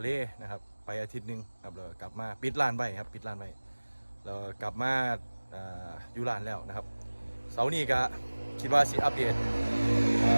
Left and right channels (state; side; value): inverted; both; correlation -1.00